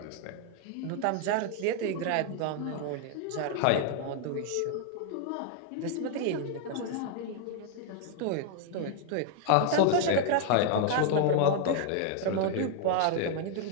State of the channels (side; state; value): both; different; correlation 0.00